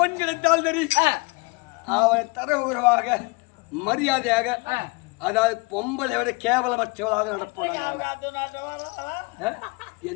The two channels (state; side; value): quieter; right; 27.7 dB